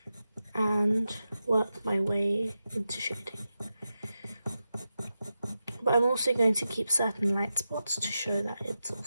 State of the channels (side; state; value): both; inverted; correlation -0.90